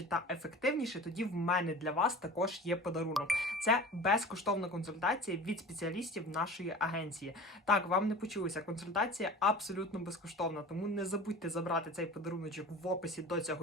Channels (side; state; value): both; normal; correlation 0.38